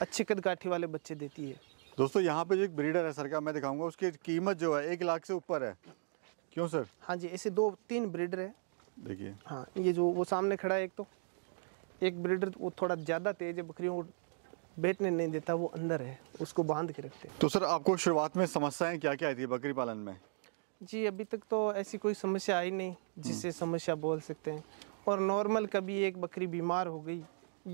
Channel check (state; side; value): silent; left; digital silence